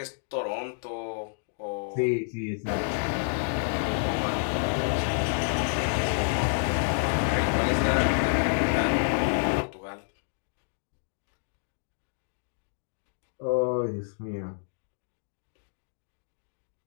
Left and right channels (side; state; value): right; silent; digital silence